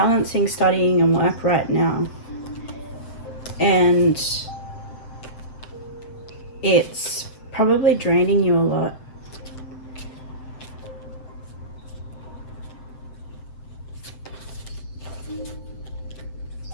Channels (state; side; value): late; right; 7.8 ms